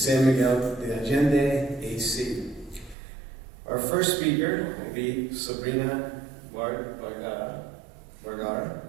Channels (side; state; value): left; drops out; at 3.0 s